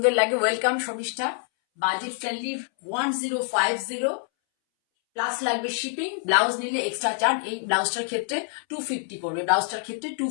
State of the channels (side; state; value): right; silent; 61 dB below the other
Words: লাগে। Welcome Sharmishtha, budget friendly 1050 plus লাগবে শিপিং, ব্লাউজ নিলে এক্সট্রা চার্জ। এই ব্লাউজটার ক্ষেত্রে 250 পড়বে, ব্লাউজটার ক্ষেত্রে